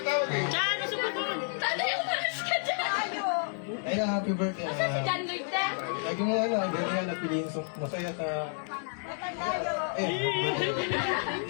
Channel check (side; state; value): right; silent; 58 dB below the other